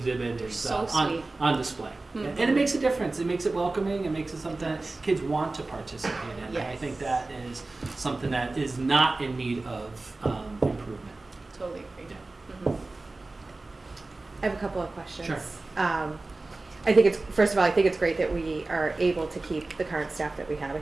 is So sweet. on display, Mhm. and it makes a difference. It makes it welcoming. It makes it something that does. kids want to participate in. And I Yes. think that is something that is not in need of improvement. Totally agree. Yeah. Mhm. I have a couple of questions. Sure. I think first of all, I think it's great that we are able to keep the current staff that we have. I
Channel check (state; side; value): quieter; left; 3.2 dB